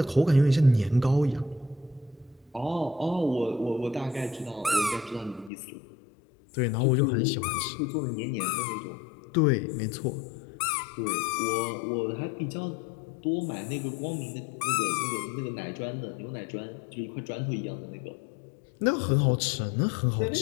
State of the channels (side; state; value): right; drops out; at 5.5 s